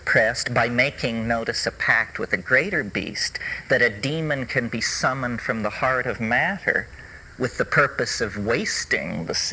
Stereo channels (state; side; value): identical; both; correlation 1.00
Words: by making, notice, a pact with a greater beast, that a demon can be summoned from the heart of matter with the purpose of wasting the